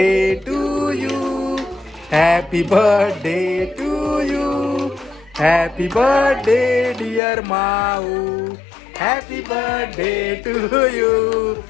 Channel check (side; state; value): right; drops out; at 7.2 s